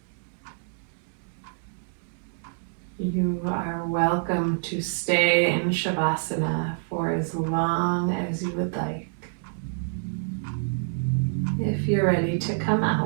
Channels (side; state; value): left; silent; digital silence